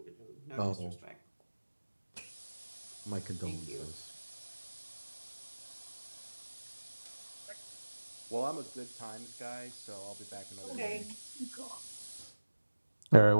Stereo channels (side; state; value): both; inverted; correlation -1.00